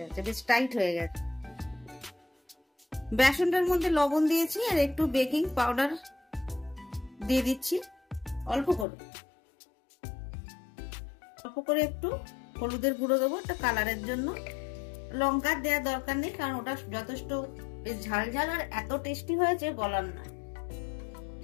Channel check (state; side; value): drops out; right; at 8.8 s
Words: বেশ টাইট হয়ে গেছে। বেসনটার মধ্যে লবণ দিয়েছি আর একটু বেকিং পাউডার দিয়ে দিচ্ছি অল্প করে। অল্প করে একটু হলুদের গুঁড়ো দেবো একটা কালারের জন্য। লঙ্কার দেওয়ার দরকার নেই, কারণ ওটা যথেষ্ট বেশ ঝাল ঝাল আর এত টেস্টি হয়েছে বলার না।